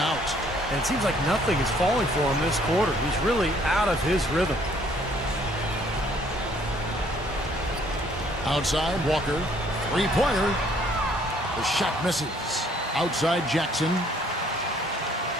And it seems like nothing is falling for him this quarter. He's really out of his rhythm. Outside, Walker. Three-pointer. The shot misses. Outside, Jackson.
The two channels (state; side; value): normal; both; correlation 0.62